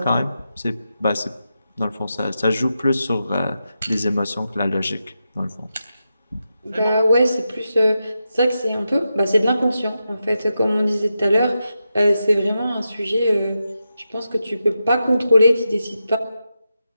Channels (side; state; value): both; inverted; correlation -0.88